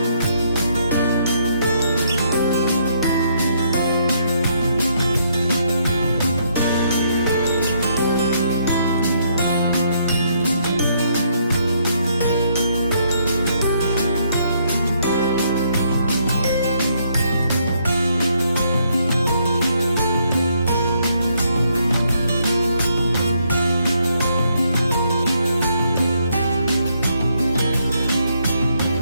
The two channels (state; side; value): inverted; both; correlation -0.72